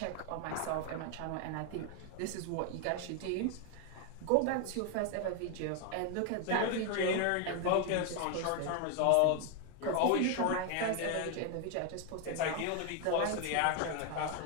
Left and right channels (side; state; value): both; different; correlation 0.01